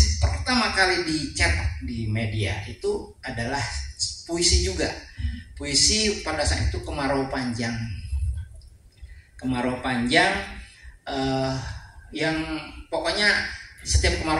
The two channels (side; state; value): both; identical; correlation 1.00